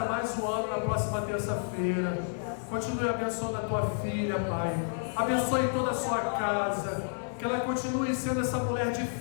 mais um ano na próxima terça-feira. Continue abençoando a Tua filha, Pai. Abençoe toda a sua casa. Que ela continue sendo essa mulher de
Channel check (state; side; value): silent; right; digital silence